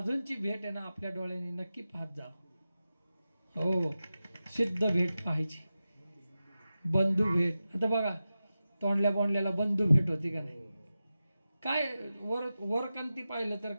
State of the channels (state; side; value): inverted; both; correlation -0.93